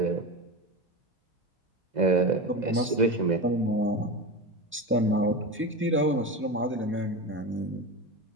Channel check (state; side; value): normal; both; correlation 0.23